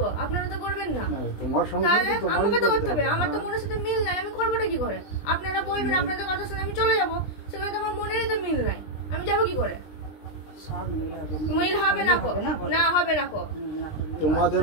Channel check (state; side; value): late; right; 20 ms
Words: আপনারা তো করবেন না। তোমার সংসার তাহলে তো তোমারই আমাকে তো করতে করতে হবে, হবে। আমার তো মনের সাথে মিল নাই, আমি করবোটা কি করে? আপনারা বলবেন, আপনাদের কথা শুনে আমি চলে যাবো, সেখানে তো আমার মনেরই তো মিল নাই, আমি যাবো কি করে? মিল হবে না কো, না হবে না কো। তোমাদের